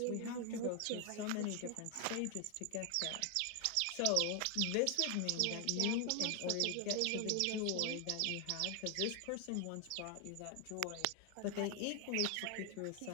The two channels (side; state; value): both; different; correlation 0.00